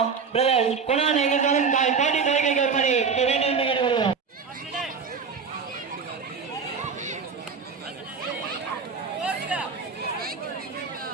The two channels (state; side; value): quieter; left; 5.5 dB